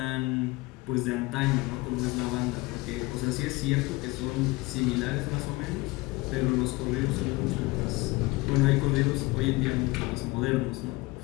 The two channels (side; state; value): right; quieter; 22.7 dB